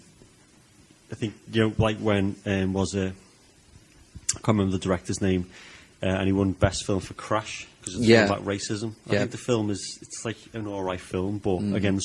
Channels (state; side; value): identical; both; correlation 1.00